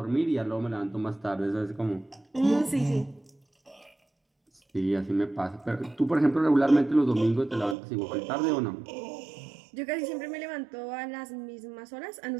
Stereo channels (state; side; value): drops out; left; at 7.8 s